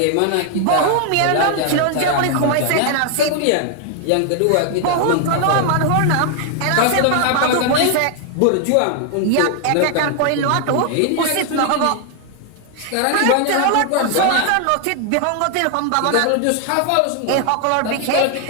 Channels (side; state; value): both; different; correlation 0.00